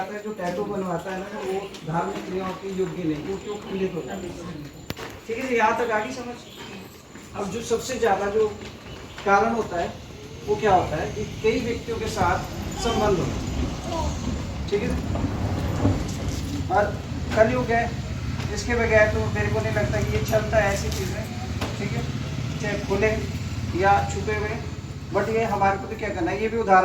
है जो टैटू बनवाता है ना वो धार्मिक क्रियाओं के योग्य नहीं, वो क्यों खंडित होता है, ठीक है? यहाँ तक आगे समझ। अब जो सबसे ज़्यादा जो कारण होता है वो क्या होता है कि कई व्यक्तियों के साथ संबंध होता है, ठीक है? और कलयुग है, इसके बगैर तो मेरे को नहीं लगता कि ये चलता है ऐसी चीज़ें, ठीक है, चाहे खुले या छुपे हुए। बट ये हमारे को तो क्या करना है, ये भी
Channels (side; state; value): both; identical; correlation 1.00